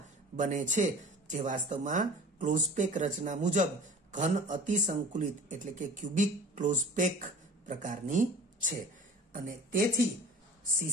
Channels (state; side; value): normal; both; correlation 0.42